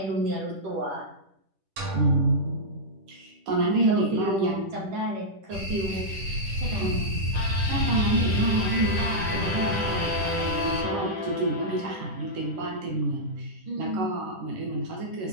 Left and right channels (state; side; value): late; left; 10 ms